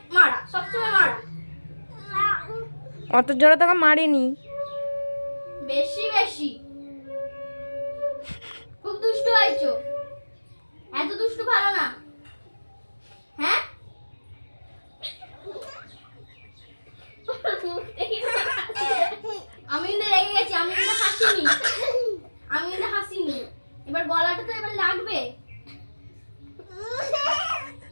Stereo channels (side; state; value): both; inverted; correlation -1.00